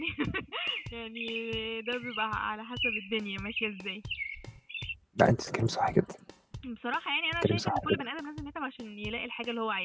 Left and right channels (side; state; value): both; identical; correlation 1.00